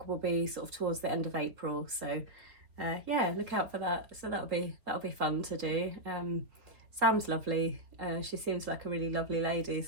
will be sort of towards the end of April. So yeah, look out for that. So that'll be fun to do. Sam's lovely. She seems like a really lovely lady,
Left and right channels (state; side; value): late; left; 3.6 ms